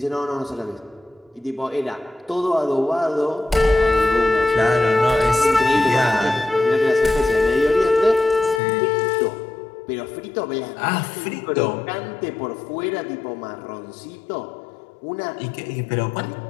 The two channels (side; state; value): right; drops out; at 8.6 s